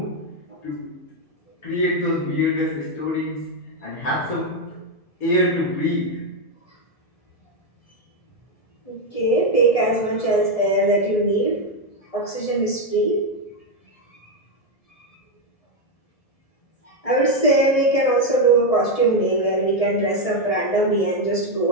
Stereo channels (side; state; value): right; late; 1.7 ms